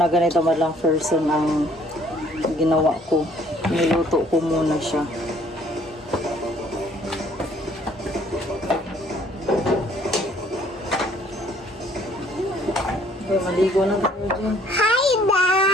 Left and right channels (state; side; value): normal; both; correlation 0.60